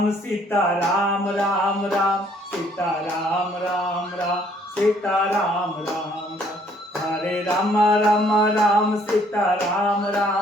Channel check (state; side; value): normal; both; correlation 0.63